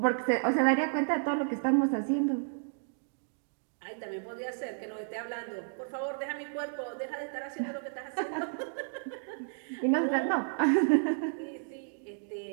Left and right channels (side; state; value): left; silent; digital silence